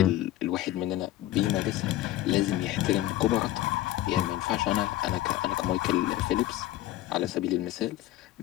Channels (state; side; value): quieter; right; 14.8 dB